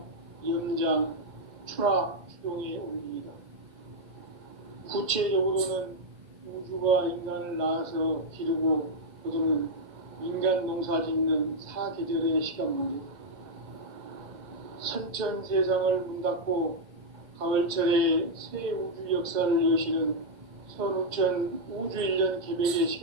염장, 추나 추동의 원리이다. 구체적으로는 우주가 인간을 낳아서 기르고 거두는 인간 농사 짓는 사계절의 시간 문제, 선천 세상을 문 닫고 가을철에 새 우주 역사를 여시는 선우천 우주일년 개백의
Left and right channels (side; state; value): left; late; 2.1 ms